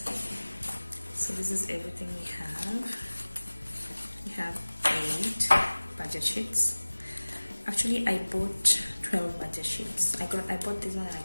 this is everything we have. We have 8 budget sheets. Actually, I bought 12 budget sheets. I bought this one and I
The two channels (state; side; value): inverted; both; correlation -1.00